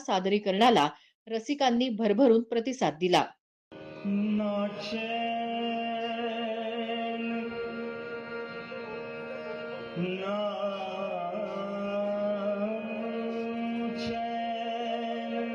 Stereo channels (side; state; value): both; identical; correlation 1.00